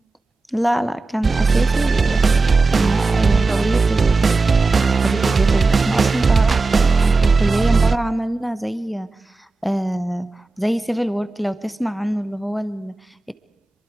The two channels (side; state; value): left; quieter; 3.6 dB